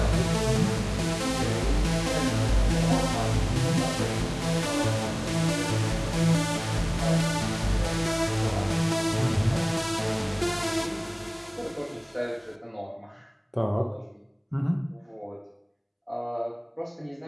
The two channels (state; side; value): identical; both; correlation 1.00